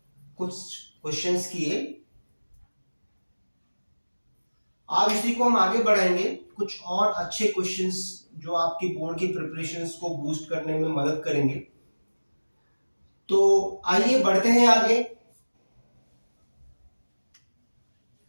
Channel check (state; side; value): inverted; both; correlation -1.00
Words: कुछ क्वेश्चंस किए। आज इसी को हम आगे बढ़ाएंगे, कुछ और अच्छे क्वेश्चंस जो आपकी बोर्ड की प्रिपरेशंस को बूस्ट करने में मदद करेंगे। तो आइए बढ़ते हैं आगे।